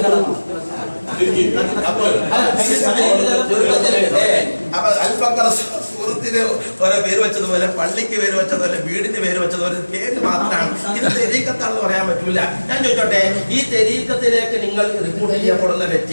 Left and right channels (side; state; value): both; inverted; correlation -1.00